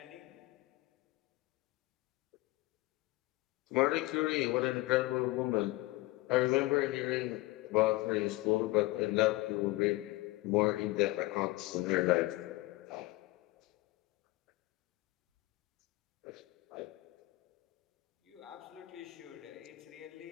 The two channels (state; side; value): quieter; right; 20.3 dB